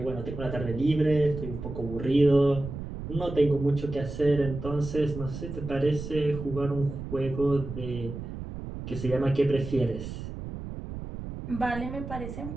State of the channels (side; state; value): right; noise; rumble, 8 dB below the sound